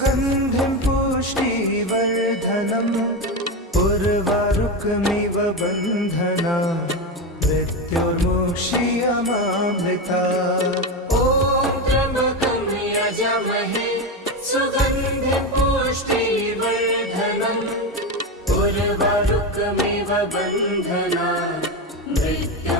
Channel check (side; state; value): both; normal; correlation 0.16